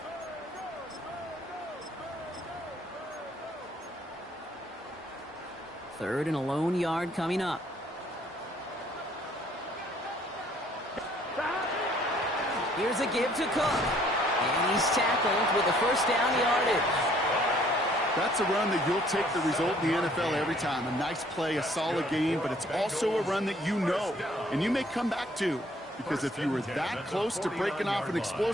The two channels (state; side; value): normal; both; correlation 0.61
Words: Third and a lone yard coming up. Here's a give to Cook. And he's tackled with the first down yardage. That's a run that you'll take the result in the NFL every time. A nice play, a solid game, but it's also a run that you know and you may come back to. Because if you were that close to breaking off an